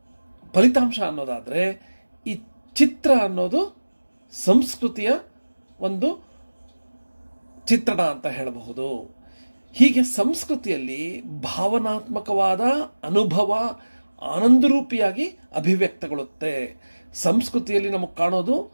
ಫಲಿತಾಂಶ ಅನ್ನೋದಾದರೆ, ಈ ಚಿತ್ರ ಅನ್ನೋದು ಸಂಸ್ಕೃತಿಯ ಒಂದು ಚಿತ್ರಣ ಅಂತ ಹೇಳಬಹುದು. ಹೀಗೆ ಸಂಸ್ಕೃತಿಯಲ್ಲಿ ಭಾವನಾತ್ಮಕವಾದ ಅನುಭವ ಆನಂದರೂಪಿಯಾಗಿ ಅಭಿವ್ಯಕ್ತಗೊಳ್ಳುತ್ತೆ. ಸಂಸ್ಕೃತಿಯಲ್ಲಿ ನಮಗೆ ಕಾಣೋದು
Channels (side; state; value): both; inverted; correlation -1.00